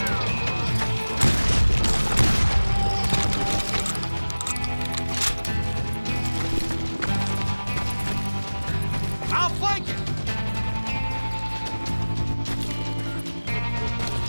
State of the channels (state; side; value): inverted; both; correlation -1.00